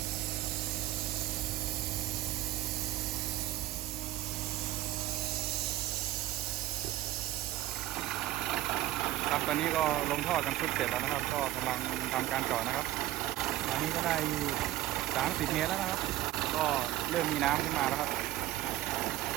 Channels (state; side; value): quieter; left; 15.0 dB